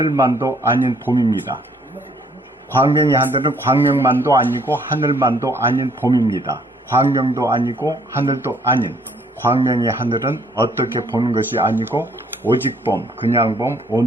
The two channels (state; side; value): normal; both; correlation 0.64